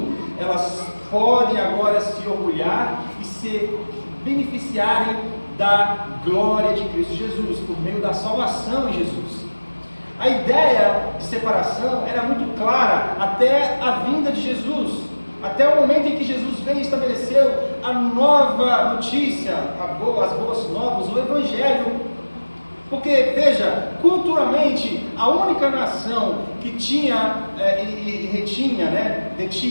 elas podem agora se orgulhar e se beneficiarem da glória de Cristo Jesus, por meio da salvação em Jesus. A ideia de separação era muito clara até a vinda de Jesus, até o momento em que Jesus veio e estabeleceu a nova notícia, as boas novas, o Evangelho. Porque, veja, culturalmente, a única nação que tinha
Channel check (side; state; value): both; inverted; correlation -1.00